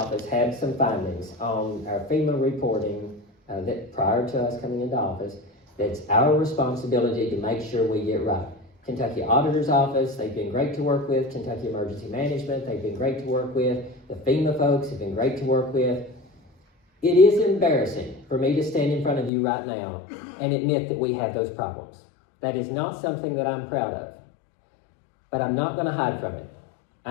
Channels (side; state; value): right; drops out; at 19.3 s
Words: had some findings on our FEMA reporting that prior to us coming into office. That's our responsibility to make sure we get right. Kentucky Auditor's Office, they've been great to work with. Kentucky Emergency Management, they've been great to work with. The FEMA folks have been great to work with. It is embarrassing for me to stand in front of you right now and admit that we have those problems. That is not something that I'm proud of. But I'm not going to hide from it.